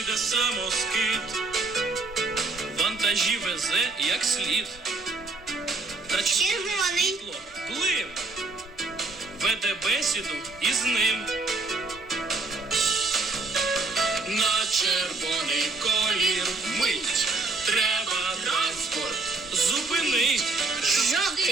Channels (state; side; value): quieter; left; 3.6 dB